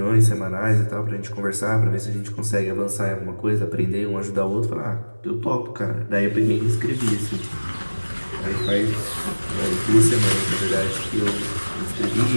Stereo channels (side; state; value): both; inverted; correlation -1.00